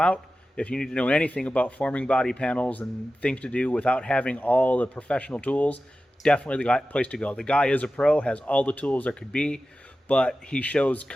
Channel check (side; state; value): both; normal; correlation 0.94